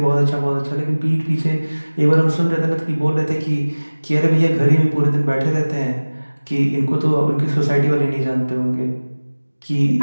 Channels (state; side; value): inverted; both; correlation -1.00